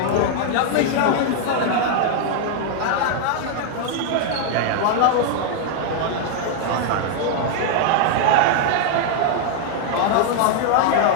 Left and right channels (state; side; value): different; both; correlation 0.00